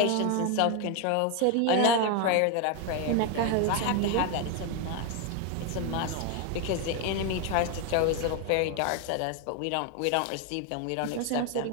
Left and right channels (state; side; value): different; both; correlation 0.01